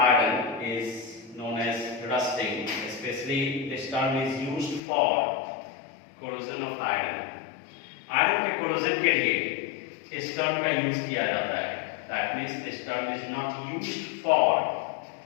iron is known as rusting. Especially this term is used for corrosion of iron. Iron के corrosion के लिए इस term का यूज किया जाता है. That means this term is not used for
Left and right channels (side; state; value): right; drops out; at 4.8 s